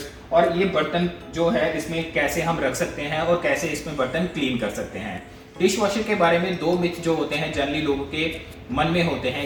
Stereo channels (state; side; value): identical; both; correlation 1.00